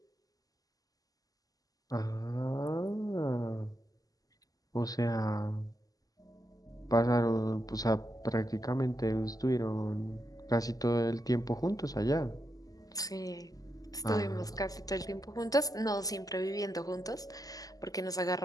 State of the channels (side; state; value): right; late; 0.17 ms